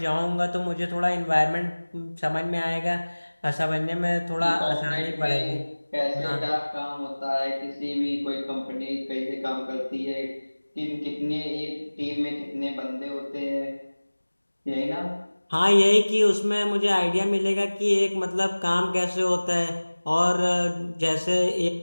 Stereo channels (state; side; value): inverted; both; correlation -1.00